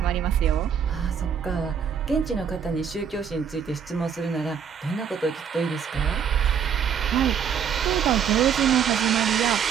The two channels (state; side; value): quieter; left; 7.6 dB